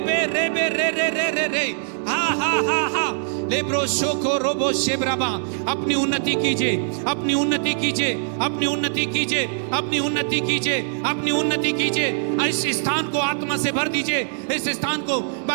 रेबे रे रे रे रे रे हा हा हा हा लेब्रो शोको रोबो शेब्राबा। अपनी उन्नति कीजिए, अपनी उन्नति कीजिए, अपनी उन्नति कीजिए, अपनी उन्नति कीजिए, अपनी उन्नति कीजिए। इस स्थान को आत्मा से भर दीजिए। इस स्थान को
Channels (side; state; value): left; silent; digital silence